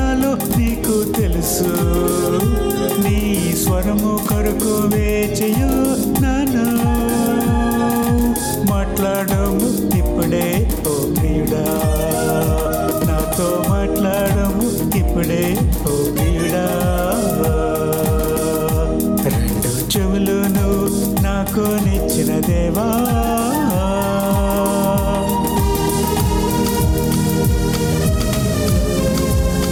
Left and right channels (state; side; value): identical; both; correlation 1.00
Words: నీకు తెలుసు. నీ స్వరము కొరకు వేచియు నన్ను మాట్లాడము ఇప్పుడే ఓ ప్రియుడా, నాతో మాట్లాడము ఇప్పుడే ఓ ప్రియుడా. 2 చెవులును నాకు నిచ్చిన దేవా,